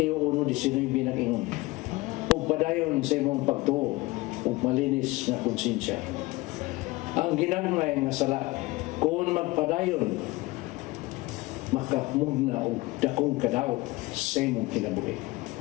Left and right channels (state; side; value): quieter; right; 21.4 dB